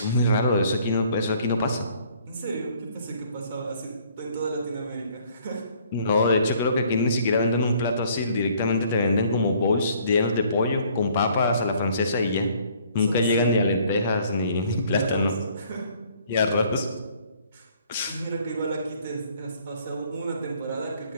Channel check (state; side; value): inverted; both; correlation -0.60